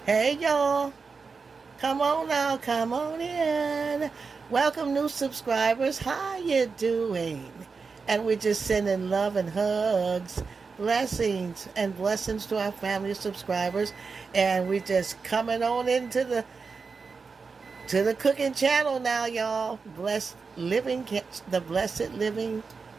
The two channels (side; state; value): left; quieter; 4.9 dB